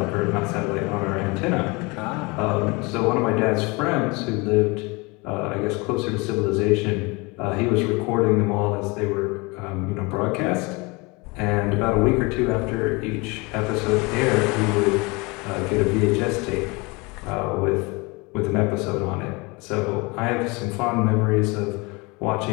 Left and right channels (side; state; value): right; quieter; 26.6 dB